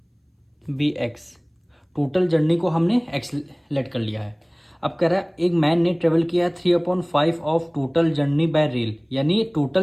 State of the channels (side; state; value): both; identical; correlation 1.00